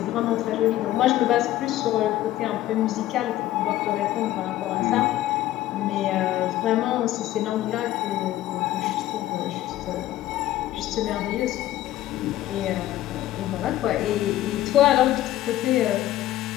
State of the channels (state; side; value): quieter; right; 14.2 dB